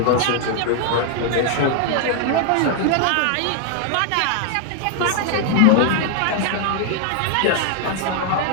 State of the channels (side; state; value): both; different; correlation 0.00